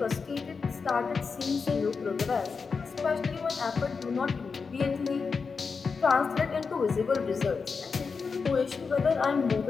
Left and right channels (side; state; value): right; quieter; 5.1 dB